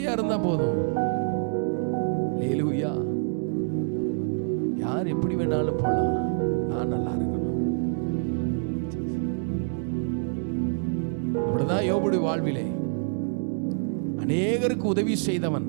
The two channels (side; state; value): left; silent; digital silence